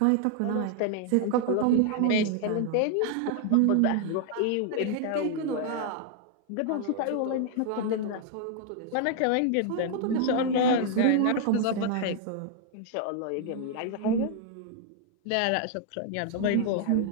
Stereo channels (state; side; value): different; both; correlation 0.00